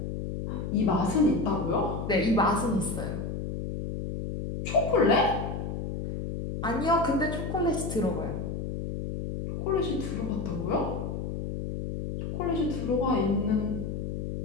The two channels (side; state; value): left; noise; hum, 4 dB below the sound